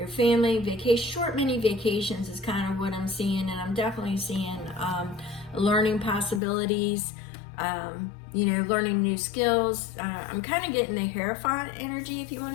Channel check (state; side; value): drops out; right; at 6.4 s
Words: family, vacation, short mini vacations is kind of what I'm seeing, and I'm definitely seeing learning possibilities, you know, learning new skills. I'm kind of getting the Hierophant energy, if you